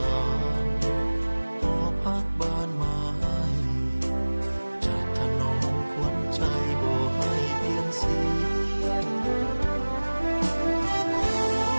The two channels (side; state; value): both; inverted; correlation -1.00